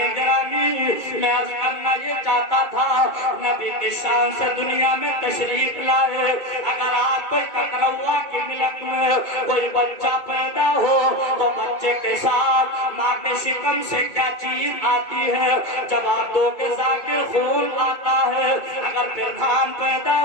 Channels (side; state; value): right; late; 2.3 ms